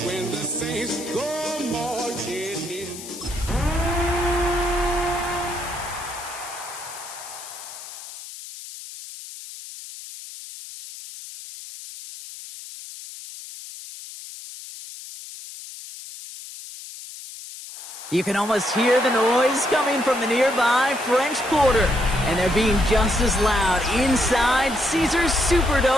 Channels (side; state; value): left; noise; hiss, 13 dB below the sound